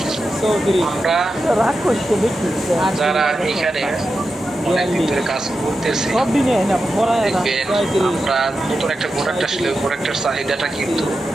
আমরা যারা এখানে অনেকদিন ধরে কাজ করতেছি, দেখবেন আমরা নতুন একটা প্রোডাক্ট আসলে প্রোডাক্টের চাহিদাটা কিন্তু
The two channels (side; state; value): both; normal; correlation 0.90